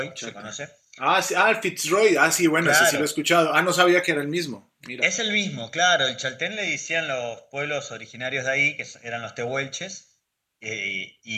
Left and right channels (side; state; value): both; identical; correlation 1.00